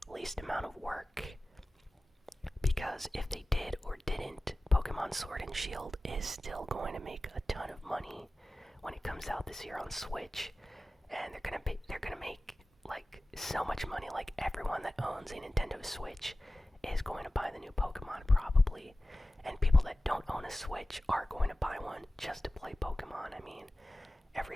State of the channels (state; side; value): normal; both; correlation 0.96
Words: least amount of work. Because if they did or didn't, Pokemon Sword and Shield is still going to make a ton of money when it comes out this year on Switch, and they're gonna make like so much money. Like everyone that owns a Nintendo Switch is going to buy the new Pokemon probably, and people that don't own a Switch are going to buy one just to play Pokemon. I mean,